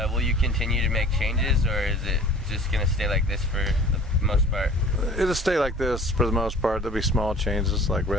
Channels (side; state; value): both; normal; correlation 0.46